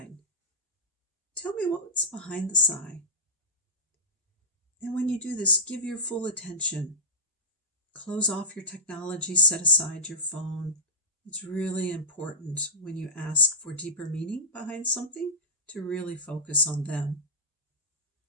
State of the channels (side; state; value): both; normal; correlation -0.17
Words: Tell me what's behind the sigh. And when you do this, give your full attention. Close off your technology, set aside your phone. It's really important when you ask for deeper meaning behind something to really focus on them.